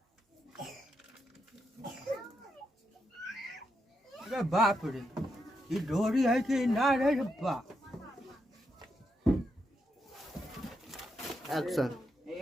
अरे बाप रे ये डोरी है कि ना रे बा एक्शन।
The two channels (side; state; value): both; normal; correlation 0.82